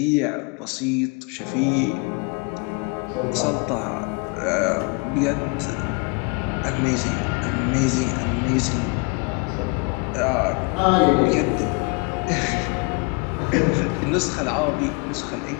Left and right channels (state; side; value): quieter; right; 30.6 dB